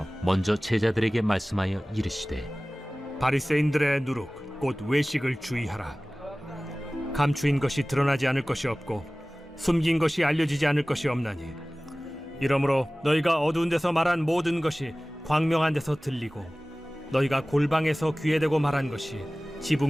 먼저 제자들에게 말씀하여 이르시되, 바리새인들의 누룩 곧 외식을 주의하라. 감추인 것이 드러나지 않을 것이 없고 숨긴 것이 알려지지 않을 것이 없나니, 이러므로 너희가 어두운 데서 말한 모든 것이 광명한 데서 들리고 너희가 골방에서 귀에 대고 말한 것이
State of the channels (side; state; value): both; normal; correlation 0.98